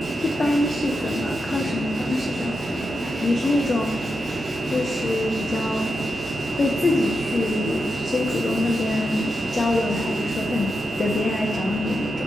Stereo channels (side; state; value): both; normal; correlation 0.86